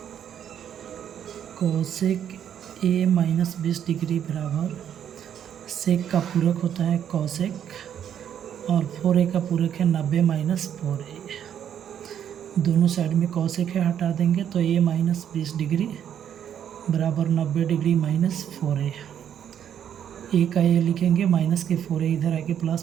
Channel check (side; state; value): left; quieter; 9.4 dB